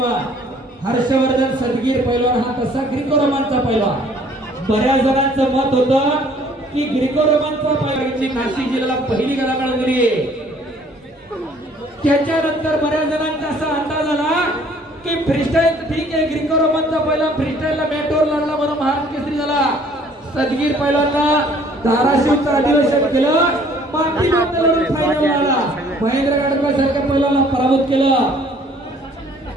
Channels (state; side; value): normal; both; correlation 0.57